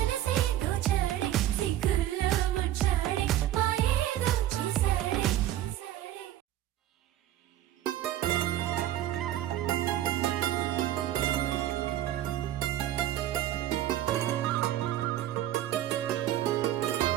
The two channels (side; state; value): left; quieter; 12.9 dB